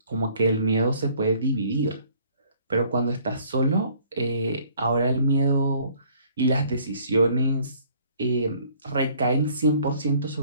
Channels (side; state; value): both; inverted; correlation -0.58